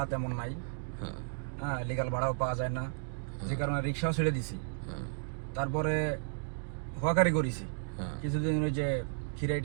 তেমন নাই। হ্যাঁ, লিগাল ভাড়াও পাওয়া যায় না, যে কারণে রিক্সাও ছেড়ে দিছি। তারপরে হকারি করেছি কিছুদিন, ওই যে খিরাই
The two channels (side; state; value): left; silent; digital silence